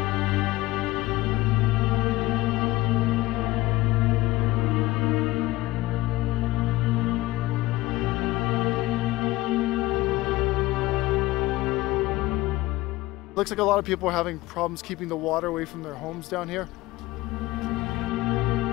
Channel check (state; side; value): quieter; right; 18.9 dB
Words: Looks like a lot of people are having problems keeping the water away from their homes down here.